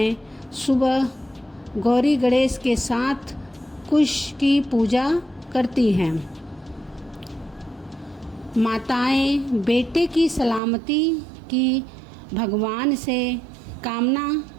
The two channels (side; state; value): left; drops out; at 10.6 s